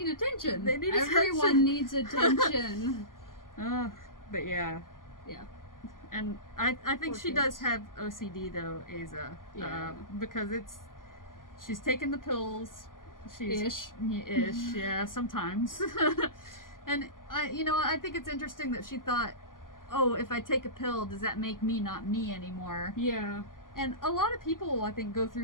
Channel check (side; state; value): right; late; 0.90 ms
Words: attention. Everyone attention. Needs attention. But yeah. Yeah. And I think she does have OCD though, Aza. Yeah. Because she's taken the pills Ish. Yeah, sometimes. And I think it's interesting that she thought, oh, if I take a pill, does that make me not me anymore? Yeah. And a lot of people, I think, go